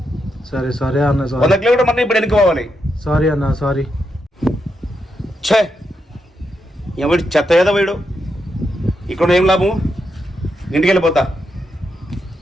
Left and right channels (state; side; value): normal; both; correlation 0.83